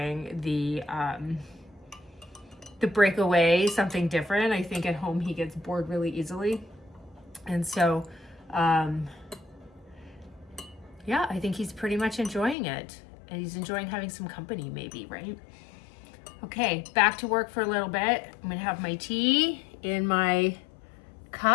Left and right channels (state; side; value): drops out; right; at 12.6 s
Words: the breakaway, something different. I think at home he gets bored really easily. And so, yeah, I think he's pretty much enjoying it. And he's enjoying having some company maybe, right? Okay, back to work for a little bit. I'm gonna have my tea in my